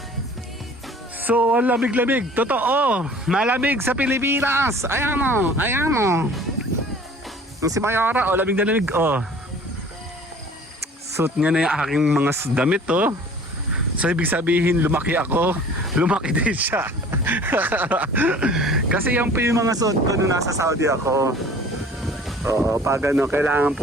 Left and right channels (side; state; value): both; normal; correlation 0.48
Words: So, ang lamig-lamig. Totoo. Malamig sa Pilipinas. Ayan mo. Ayan mo. Si Mayara, lamig na lamig, suot niya na yung aking mga damit, So, ibig sabihin, lumaki ako. Lumaki din siya. Kasi yan po yung mga suot ko nung nasa Saudi ako. Oo, pag kailangan